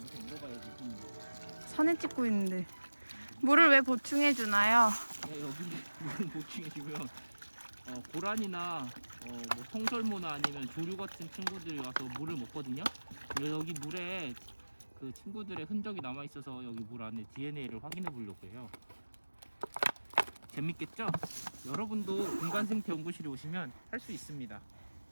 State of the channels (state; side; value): inverted; both; correlation -1.00